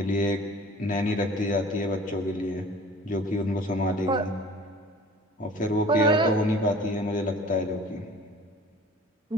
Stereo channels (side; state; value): both; normal; correlation 0.45